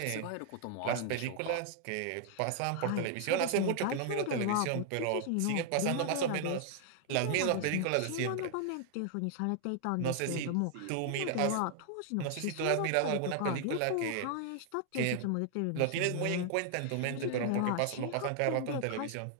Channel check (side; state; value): both; different; correlation 0.00